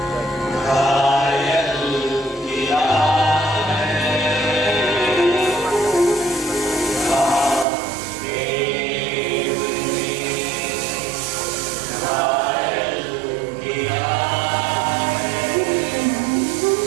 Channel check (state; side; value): drops out; left; at 7.7 s